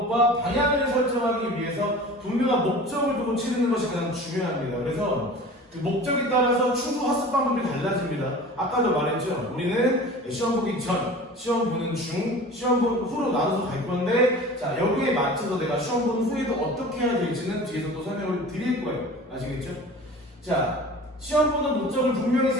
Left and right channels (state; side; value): normal; both; correlation 0.39